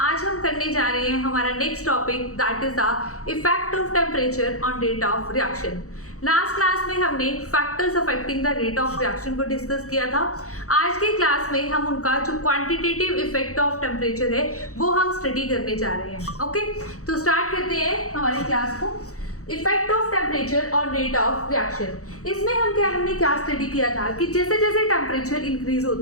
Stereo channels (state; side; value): late; right; 0.65 ms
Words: हम करने जा रहे हैं हमारा next topic that is the effect of temperature on rate of reaction. Last class में हमने factors affecting the rate of reaction को डिस्कस किया था। आज के क्लास में हम उनका जो क्वांटिटेटिव इफेक्ट ऑफ टेम्परेचर है वो हम स्टडी करने जा रहे हैं। ओके, तो स्टार्ट करते हैं हमारी क्लास को। Effect of temperature on rate of reaction. इसमें हमने क्या स्टडी किया था कि जैसे जैसे टेम्परेचर इंक्रीज